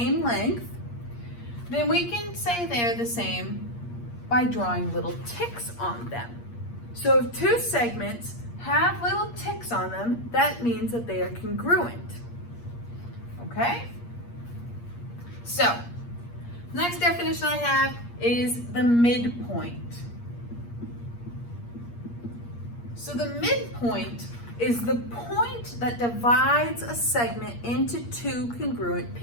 length, then we can say they're the same by drawing little ticks on them. So if two segments have little ticks on them, that means that they are congruent. Okay? So, next definition I have is the midpoint. So the midpoint is the point that divides a segment into two congruent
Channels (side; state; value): right; late; 8.5 ms